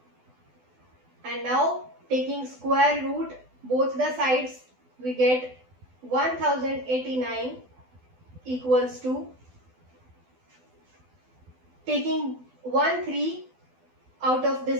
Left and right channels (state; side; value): late; left; 12 ms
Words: And now taking square root both the sides, we get 1089 equals to, taking 1 3 out of